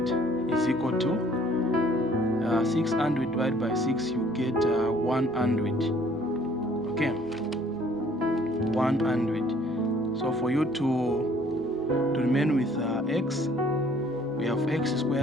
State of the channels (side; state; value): right; noise; hum, 28 dB below the sound